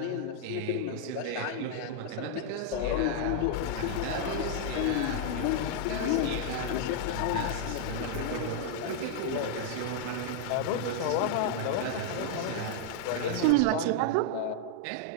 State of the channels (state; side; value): different; both; correlation -0.01